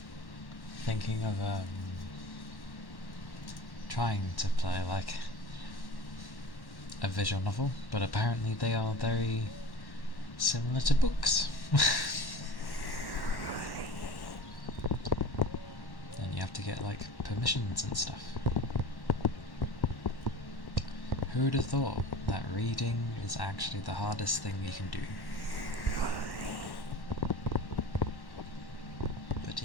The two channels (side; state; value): right; late; 1.1 ms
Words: thinking of trying to play like a visual novel, but apparently they are very similar to books. And you have to get like permissions and stuff. Who would have thought that reading is actually the hardest thing you can do? But